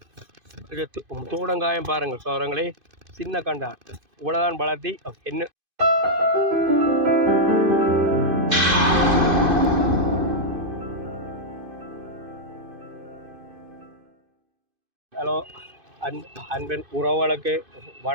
தோடங்காயம் பாருங்கள். சோரங்களே சின்ன கண்டா இவ்வளோதான் வளர்த்தி என்ன. ஹலோ, அன்பின் உறவுகளுக்கு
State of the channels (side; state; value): left; late; 2.5 ms